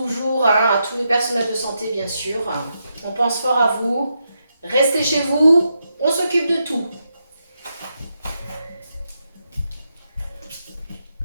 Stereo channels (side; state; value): both; inverted; correlation -0.84